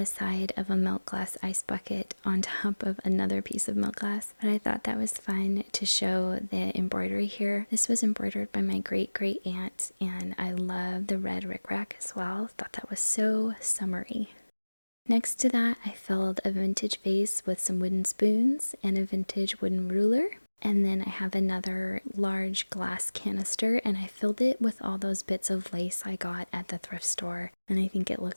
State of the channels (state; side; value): inverted; both; correlation -1.00